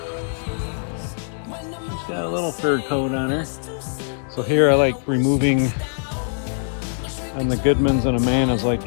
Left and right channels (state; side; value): silent; right; digital silence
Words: Just got a little third coat on it. So here I like removing, on the Goodmans and Amandas, like